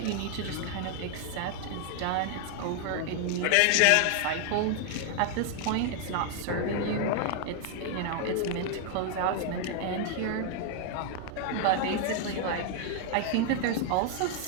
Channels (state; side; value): different; both; correlation 0.00